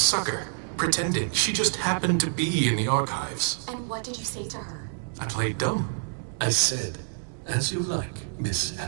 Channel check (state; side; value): silent; left; digital silence